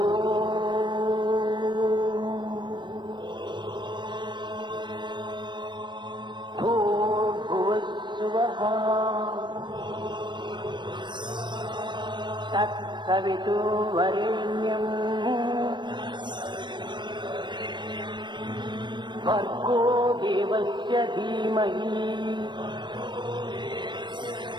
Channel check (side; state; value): left; late; 0.22 ms